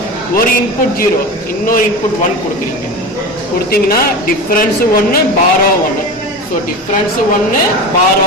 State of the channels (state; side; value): normal; both; correlation 0.28